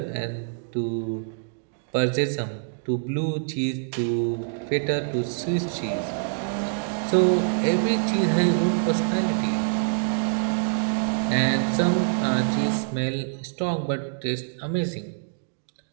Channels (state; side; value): silent; left; digital silence